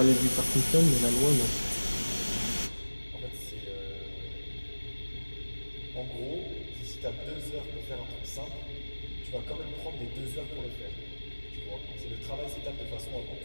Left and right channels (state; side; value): inverted; both; correlation -1.00